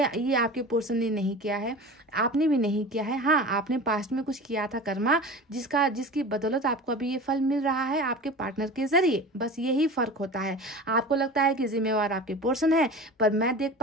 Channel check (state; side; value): normal; both; correlation 0.34